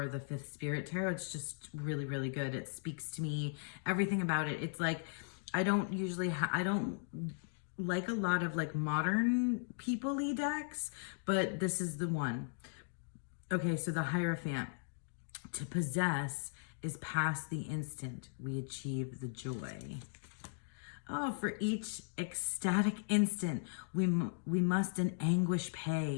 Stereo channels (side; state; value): right; silent; digital silence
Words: the Fifth Spirit Tarot. It's just really, really good. It speaks to me. Everything about it. It's like, I don't like a lot of like modern people-y decks, but this is the one. Okay, so the Hierophant. To possess is past the instant we achieve the joy. Oh, for each ecstatic instant, we must in anguish